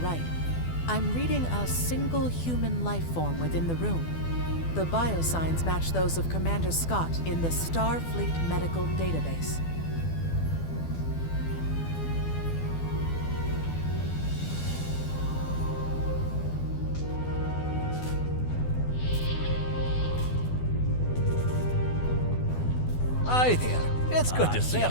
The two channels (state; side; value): late; right; 12 ms